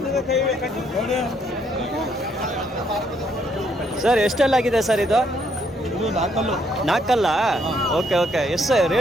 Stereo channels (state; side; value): normal; both; correlation 0.70